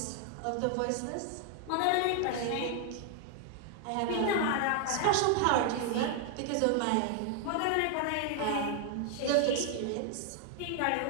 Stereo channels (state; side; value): different; both; correlation 0.00